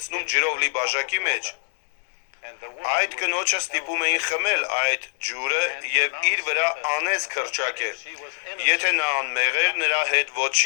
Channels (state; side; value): silent; right; 63 dB below the other